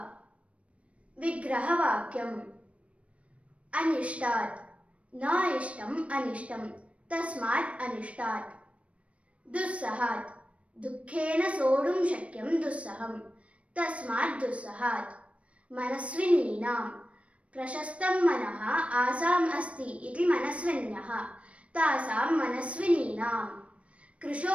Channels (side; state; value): left; late; 0.063 ms